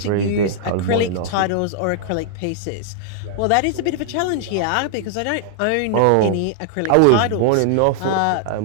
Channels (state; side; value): different; both; correlation -0.01